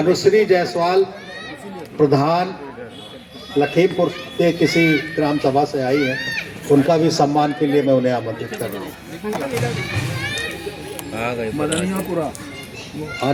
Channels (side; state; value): both; identical; correlation 1.00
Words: जायसवाल प्रधान लखीमपुर के किसी ग्राम सभा से आई हैं, उनका भी सम्मान के लिए मैं उन्हें आमंत्रित कर रहा हूँ।